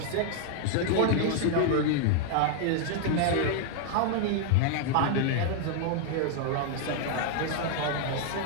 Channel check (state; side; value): different; both; correlation 0.00